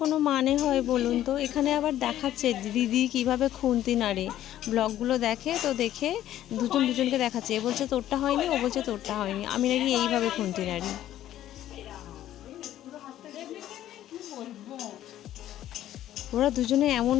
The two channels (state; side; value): quieter; right; 12.6 dB